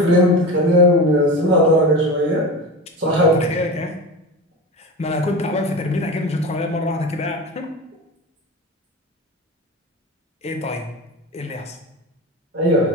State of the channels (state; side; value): normal; both; correlation 0.27